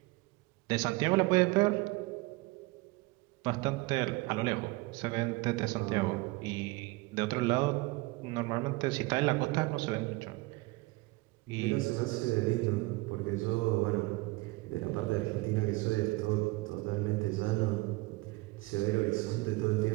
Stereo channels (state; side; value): quieter; left; 22.7 dB